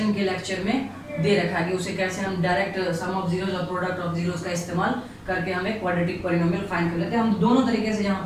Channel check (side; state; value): both; identical; correlation 1.00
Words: के लेक्चर में दे रखा है कि उसे कैसे हम डायरेक्ट सम ऑफ जीरोज और प्रोडक्ट ऑफ जीरोज का इस्तेमाल करके हमें क्वाड्रेटिक पॉलिनोमियल फाइंड कर लेते हैं। हम दोनों तरीके से यहाँ